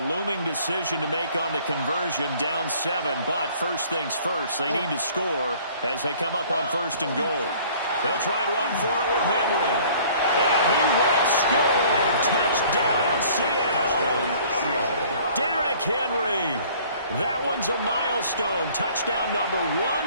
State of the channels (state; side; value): inverted; both; correlation -0.53